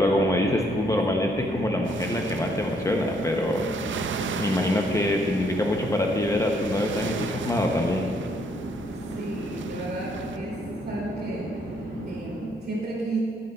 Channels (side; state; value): both; normal; correlation 0.69